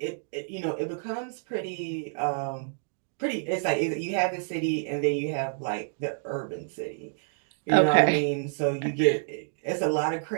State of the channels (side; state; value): left; silent; digital silence